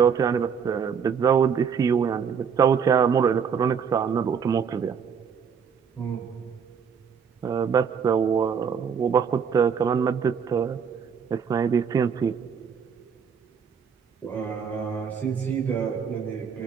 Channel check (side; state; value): left; quieter; 6.9 dB